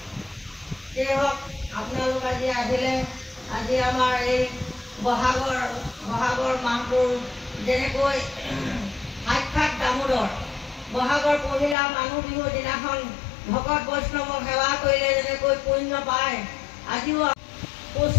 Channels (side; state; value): right; drops out; at 11.8 s